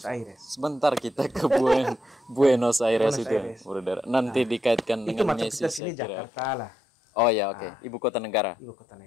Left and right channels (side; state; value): right; drops out; at 5.8 s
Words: Aires. Sebentar kita ke Buenos Aires itu, Bruder. Nanti dikaitkan itu dengan Yesus. Itu macam kita sini Jakarta lah. Oh ya, oke. Ibu kota negara.